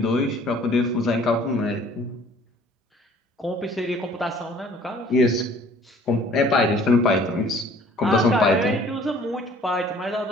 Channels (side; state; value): both; normal; correlation 0.54